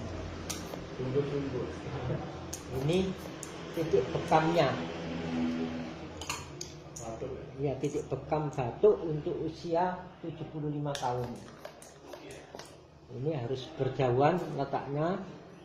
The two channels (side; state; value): both; identical; correlation 1.00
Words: tunggu-tunggu. Ini titik bekamnya. Batuk. Ya, titik bekam batuk untuk usia 75 tahun. Ini harus berjauhan letaknya